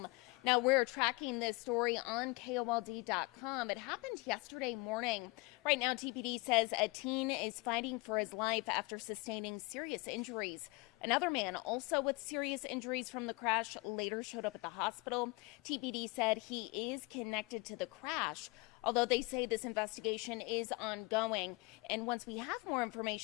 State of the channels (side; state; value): right; quieter; 25.2 dB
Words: Now, we're tracking this story on KOLD.com. It happened yesterday morning. Right now, TPD says a teen is fighting for his life after sustaining serious injuries. Another man, also with serious injuries from the crash, later showed up at the hospital. TPD said he is connected to the crash, although they say this investigation is ongoing. And once we have more